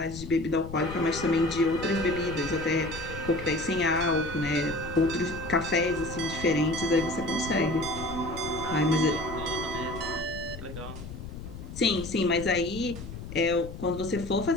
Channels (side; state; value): left; noise; rumble, 11 dB below the sound